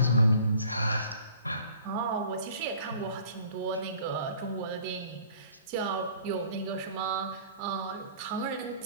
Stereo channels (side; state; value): both; inverted; correlation -0.50